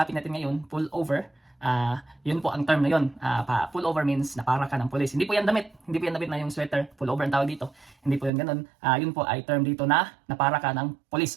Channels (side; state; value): left; drops out; at 8.3 s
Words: natin ngayon, pull over. Yun po ang term na yun. Pull over means napara ka ng pulis. Hindi po yan damit. Hindi po yan damit na yung sweater. Pull over ang tawag dito. Hindi po yan ganun. Yun po ay term dito na napara ka ng pulis